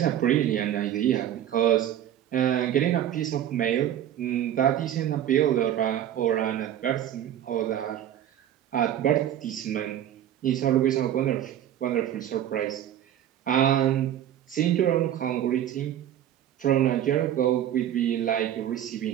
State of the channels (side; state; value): left; quieter; 11.1 dB